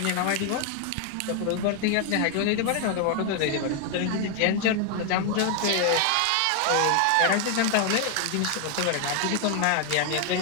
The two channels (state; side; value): different; both; correlation 0.00